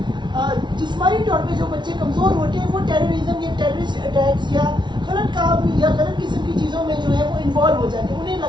جسمانی طور پہ جو بچے کمزور ہوتے ہیں وہ ٹیررزم یا ٹیررسٹ اٹیکس یا غلط کام یا غلط قسم کی چیزوں میں جو ہے وہ انوالو ہو جاتے ہیں. انہیں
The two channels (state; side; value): late; left; 0.22 ms